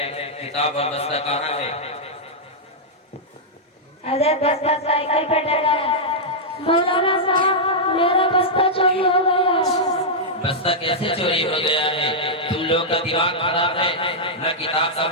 किताब और बस्ता कहाँ है? अरे बस्ता साइकिल पे डला है। मौलाना साहब मेरा बस्ता चोरी हो गया। बस्ता कैसे चोरी हो गया है? तुम लोग का दिमाग खराब है। न किताब का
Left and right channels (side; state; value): both; normal; correlation -0.08